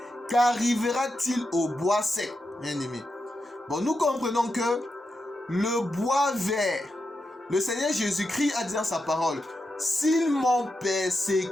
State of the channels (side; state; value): both; normal; correlation 0.87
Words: qu'arrivera-t-il au bois sec, bien aimé? Bon, nous comprenons que le bois vert, le Seigneur Jésus-Christ a dit dans sa parole, s'ils m'ont